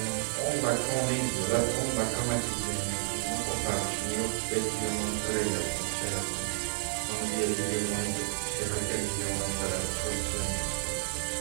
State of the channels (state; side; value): silent; left; 57 dB below the other